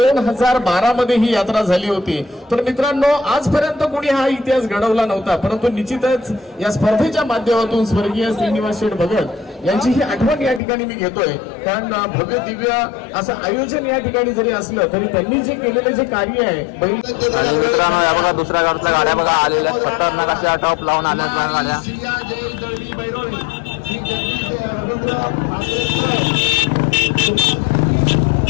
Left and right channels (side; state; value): right; drops out; at 10.6 s